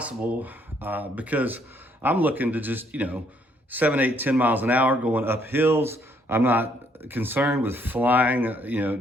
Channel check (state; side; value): normal; both; correlation 0.68